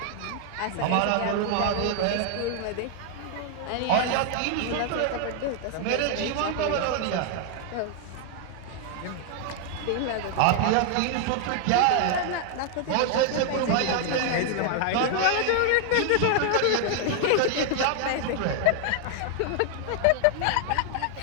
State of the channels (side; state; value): both; different; correlation 0.00